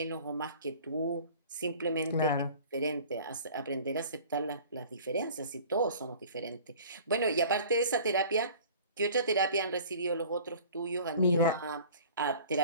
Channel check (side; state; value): both; inverted; correlation -0.46